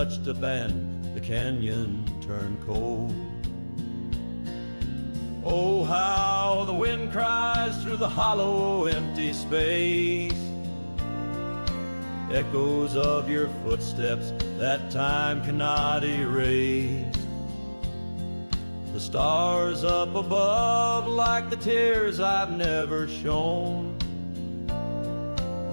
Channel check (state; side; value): inverted; both; correlation -1.00